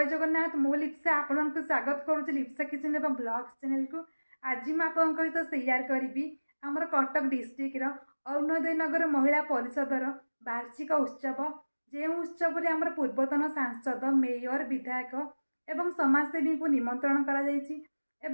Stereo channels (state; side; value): inverted; both; correlation -1.00